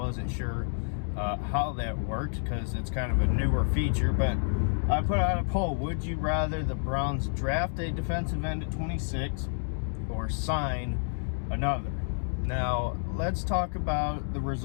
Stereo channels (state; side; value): silent; right; digital silence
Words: sure how that worked because it's kind of a newer feature, but I put out a poll. Would you rather the Browns draft a defensive end at 26 or sign another? Now, let's talk about the